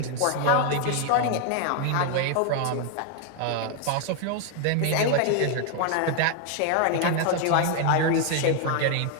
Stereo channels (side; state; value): both; different; correlation 0.00